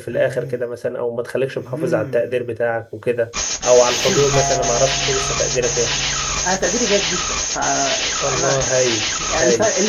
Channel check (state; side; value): identical; both; correlation 1.00